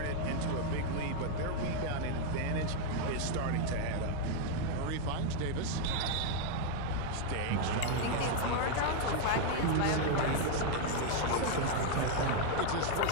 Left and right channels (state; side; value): different; both; correlation 0.00